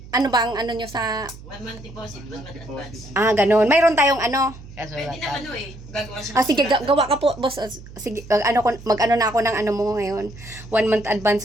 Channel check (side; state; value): right; noise; hum, 17 dB below the sound